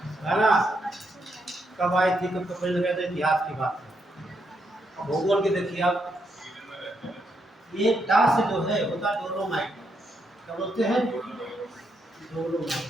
है ना, कब आई थी, कब कंपनी लगा था, इतिहास की बात है। भूगोल की देखिए आप, ये डा से जो है होता डोलोमाइट, क्या बोलते हैं? डोलोमाइट।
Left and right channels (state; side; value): normal; both; correlation 0.79